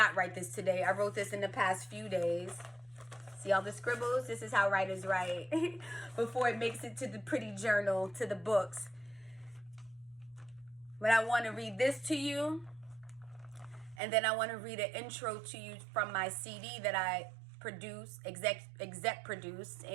write this today. I wrote this in the past few days. See all the scribbles? This is how writers write before it makes it to the pretty journal, to the books. But I want to read this to you, and then I want to read an intro to you from my CD that I produced, exec produced,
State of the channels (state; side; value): drops out; left; at 14.0 s